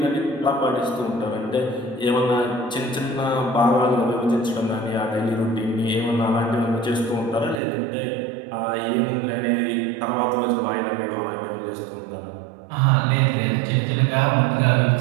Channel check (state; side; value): drops out; left; at 7.6 s